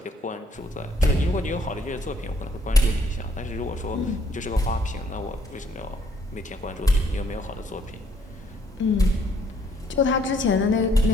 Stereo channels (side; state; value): both; normal; correlation 0.65